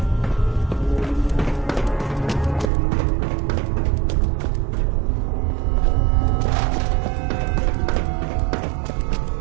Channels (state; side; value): drops out; left; at 2.7 s